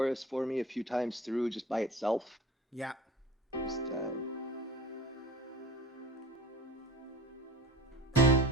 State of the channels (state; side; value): normal; both; correlation 0.39